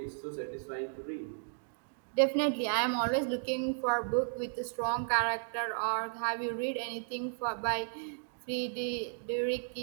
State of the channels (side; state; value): left; silent; digital silence